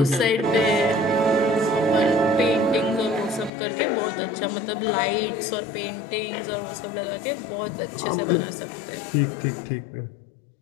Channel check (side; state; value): right; drops out; at 3.5 s